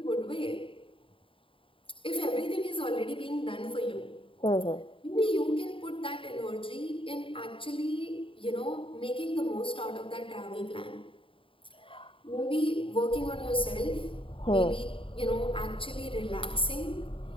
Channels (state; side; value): late; right; 0.25 ms